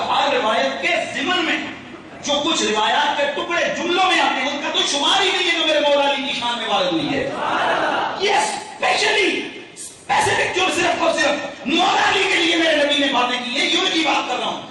ہر روایت کے ضمن میں جو کچھ روایات کے ٹکڑے جملوں میں آتے ہیں ان کا تو شمار ہی نہیں ہے جو میرے مولا علی کی شان میں وارد ہوئی ہے۔ یہ اسپیشلی اسپیسیفک جو صرف اور صرف مولا علی کے لیے میرے نبی نے باتیں کی ہیں، یہ ان کی بات کر رہا ہوں،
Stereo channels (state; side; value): identical; both; correlation 1.00